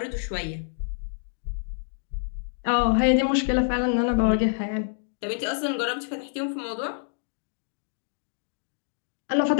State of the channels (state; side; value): silent; right; digital silence